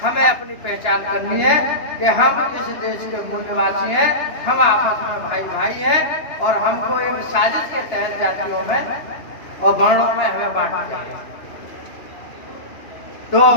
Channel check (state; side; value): late; right; 2.9 ms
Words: हमें अपनी पहचान करनी है कि हम इस देश के मूल निवासी हैं, हम आपस में भाई भाई हैं और हमको एक साजिश के तहत जातियों में और वर्णों में हमें बांट दिया। तो